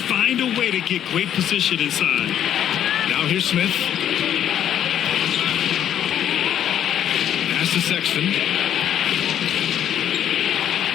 a way to get great position inside. Now here's Smith. To Sexton.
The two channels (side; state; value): right; quieter; 10.2 dB